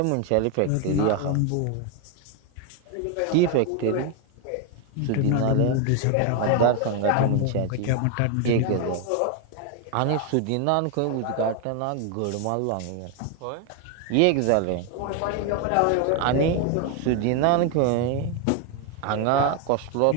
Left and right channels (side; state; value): both; different; correlation 0.01